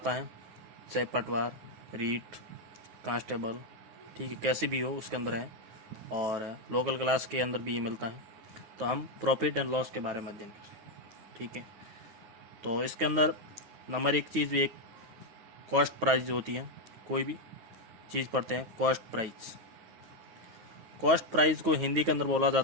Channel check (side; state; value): left; late; 9.6 ms